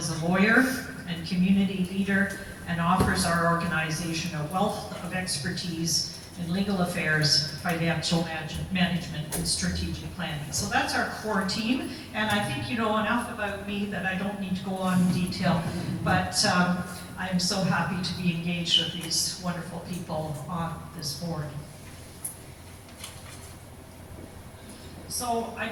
a lawyer and community leader, and offers our organization a wealth of expertise in legal affairs, financial management, and strategic planning. So that's our core team, and I think you know enough about me that I don't need to go on in detail, but I'm so happy to be engaged with these wonderful people on this board. So I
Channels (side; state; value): both; identical; correlation 1.00